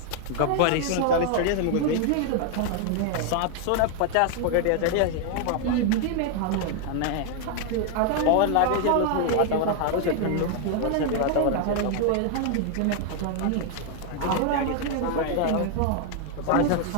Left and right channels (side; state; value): both; different; correlation 0.00